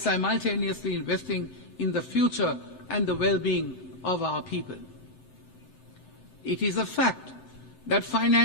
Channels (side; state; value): right; late; 7.8 ms